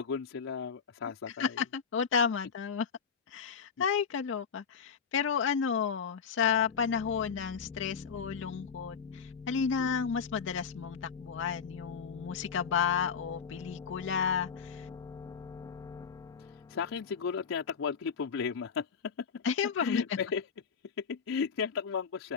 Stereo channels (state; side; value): quieter; right; 6.5 dB